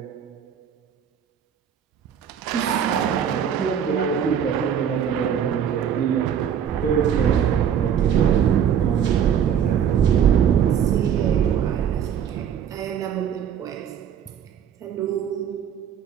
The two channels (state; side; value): quieter; left; 8.6 dB